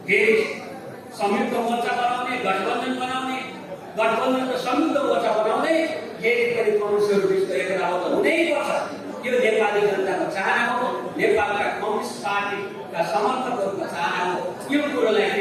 फेरि संयुक्त मोर्चा बनाउने, गठबन्धन बनाउने, गठबन्धन र संयुक्त मोर्चा बनाउँदै फेरि पनि कम्युनिस्टहरू बिचको एकताबद्ध हुनैपर्छ। यो नेपाली जनताको चाहना हो, नेपालका कम्युनिस्ट पार्टीका समर्थकहरूको चाहना हो। यो कुरोलाई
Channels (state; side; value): identical; both; correlation 1.00